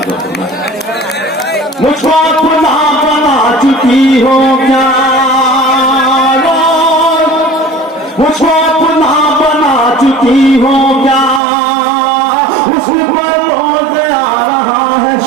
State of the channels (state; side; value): drops out; left; at 11.4 s